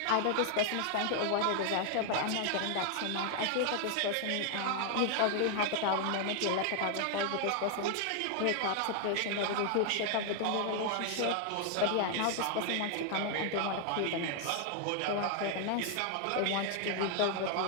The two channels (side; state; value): both; different; correlation 0.00